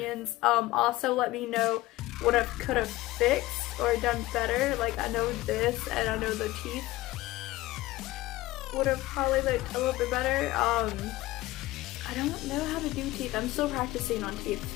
Also let me know what I could have fixed or done better. Like I know this and I know the teeth would have probably looked a little bit better. I don't know how to do teeth. I'm still practicing on teeth,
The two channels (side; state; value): right; quieter; 18.0 dB